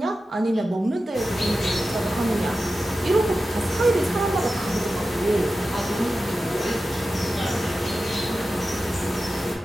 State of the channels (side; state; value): both; normal; correlation 0.93